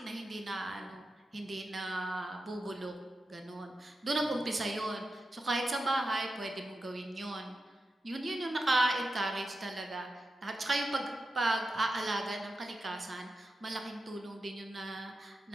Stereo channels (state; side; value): normal; both; correlation 0.90